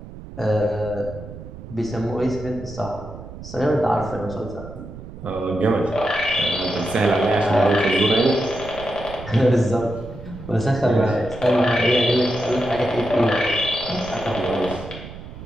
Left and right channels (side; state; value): right; noise; rumble, 14 dB below the sound